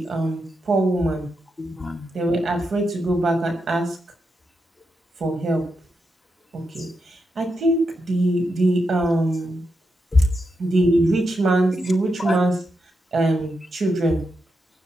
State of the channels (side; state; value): both; normal; correlation 0.85